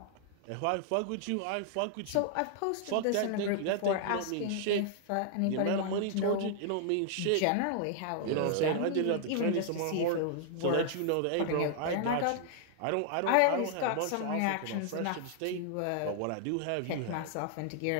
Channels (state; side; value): different; both; correlation 0.00